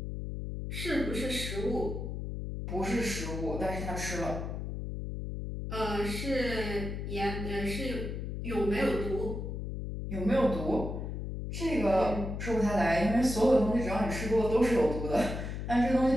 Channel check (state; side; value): noise; left; hum, 5 dB below the sound